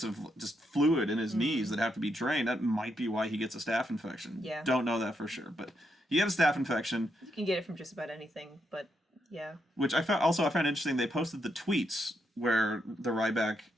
of just fluid in his knees that have to be drained. That might be why he gets a staph infection. Yeah, don't know that for sure, but he had a staph infection. You can get it from just about anything, but yeah. Which I found interesting. They posted the tweets where the Ryback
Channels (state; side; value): normal; both; correlation 0.80